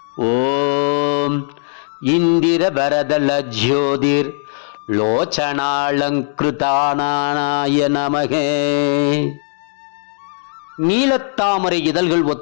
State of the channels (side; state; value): right; silent; digital silence